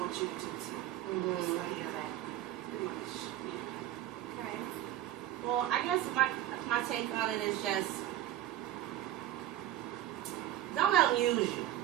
you to too. So yeah, pretty much. Yeah. Okay. Well, I guess my take on it is just don't let them use you.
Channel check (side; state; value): left; quieter; 13.0 dB